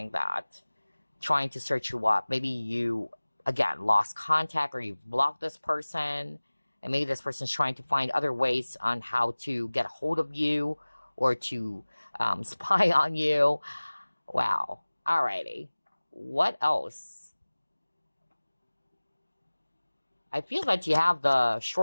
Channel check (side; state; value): both; inverted; correlation -1.00